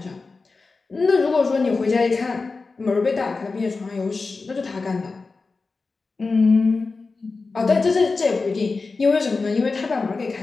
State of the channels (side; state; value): right; quieter; 4.0 dB